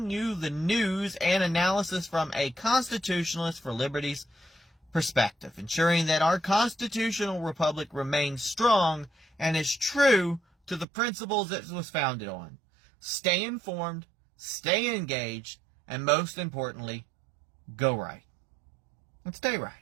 you the news and analysis from a constitutionalist for liberty's perspective, ensuring that our constitutional republic remains strong and is true to the principles it was founded on. Stay informed, stay engaged, and most importantly, go right. And stay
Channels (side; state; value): left; drops out; at 10.9 s